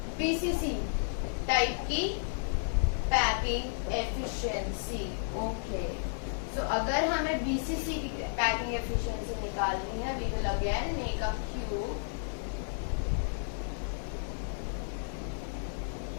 BCC type की packing efficiency. Okay. So अगर हमें BCC की packing efficiency निकालनी है, we will again make a cube.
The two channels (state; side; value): silent; right; 56 dB below the other